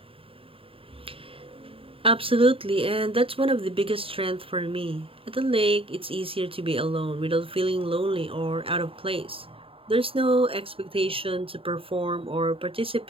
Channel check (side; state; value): left; late; 0.27 ms